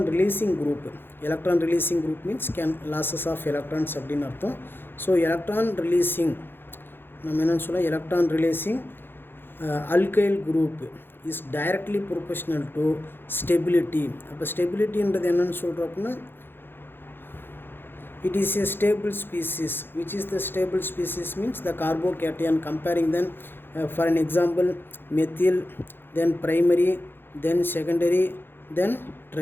releasing group means can losses of electrons அப்படின்னு அர்த்தம். So electron releasing நம்ம என்னன்னு சொல்ல, electron releasing alkyl group is directly proportional to stability. அப்போ ஸ்டெபிலிட்டின்றது என்னன்னு சொல்கிறோம் அப்படின்னா, it is a stable species. Which is the stable species means the carbocation. Comparing then for an example methyl, then primary, then secondary, then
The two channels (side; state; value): right; late; 0.10 ms